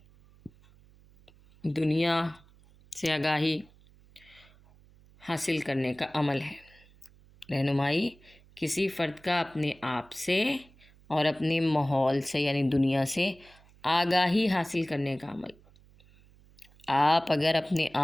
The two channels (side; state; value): right; noise; hum, 27 dB below the sound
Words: دنیا سے آگاہی حاصل کرنے کا عمل ہے۔ رہنمائی کسی فرد کا اپنے آپ سے اور اپنے ماحول سے یعنی دنیا سے آگاہی حاصل کرنے کا عمل۔ آپ اگر اپنے